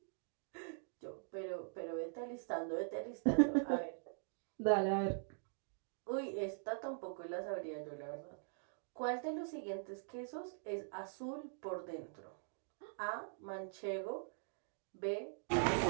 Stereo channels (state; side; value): silent; left; digital silence